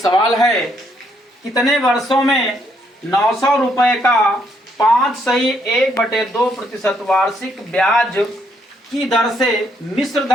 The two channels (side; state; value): both; normal; correlation 0.72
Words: है, कितने वर्षों में 900 रुपए का 5/1/2% वार्षिक ब्याज की दर से मिश्र